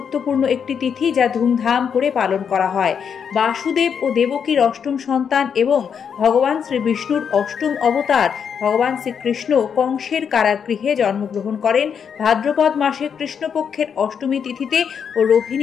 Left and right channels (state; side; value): quieter; right; 7.2 dB